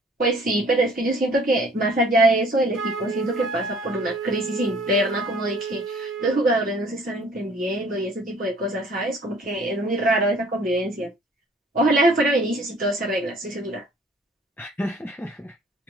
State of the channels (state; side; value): normal; both; correlation 0.55